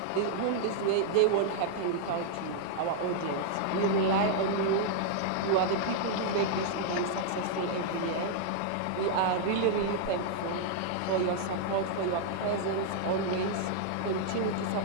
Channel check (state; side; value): different; both; correlation -0.01